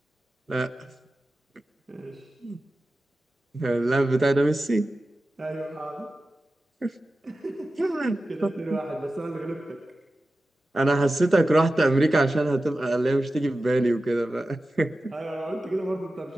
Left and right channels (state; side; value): normal; both; correlation 0.94